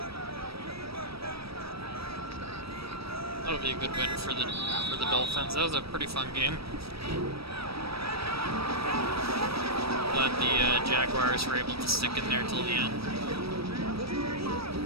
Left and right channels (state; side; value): late; left; 0.77 ms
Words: That'll be a good win for the Dolphins. That was a pretty fun game. Glad the Jaguars were able to stick in there till the end.